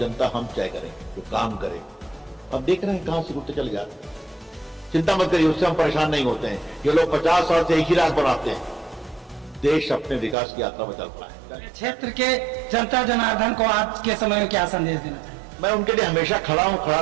हम तय करेंगे, तो काम करें। अब देख रहे हैं कहां से उठते चले जाते हैं। चिंता मत करिए, उससे हम परेशान नहीं होते हैं। ये लोग 50 साल से एक ही रात बनाते हैं। देश अपने विकास की यात्रा में चल रहा है। क्षेत्र के जनता जनार्दन को आज के समय में क्या संदेश देना चाहिए? मैं उनके लिए हमेशा खड़ा हूं, खड़ा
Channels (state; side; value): drops out; left; at 10.4 s